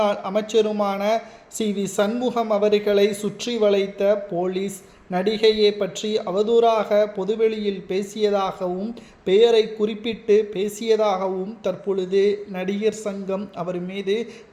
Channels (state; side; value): identical; both; correlation 1.00